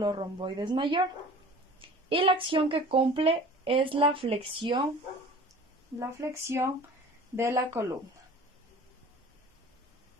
romboides mayor y la acción que cumple es la flexión de la columna.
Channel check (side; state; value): both; normal; correlation 0.43